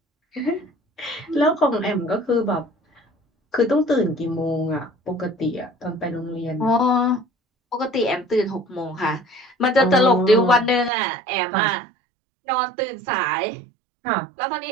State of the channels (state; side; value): drops out; left; at 10.9 s